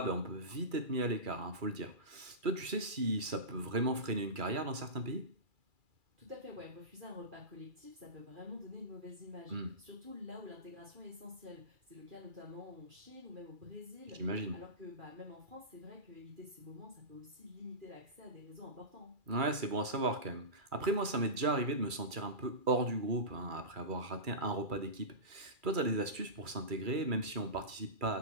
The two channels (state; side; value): late; left; 2.3 ms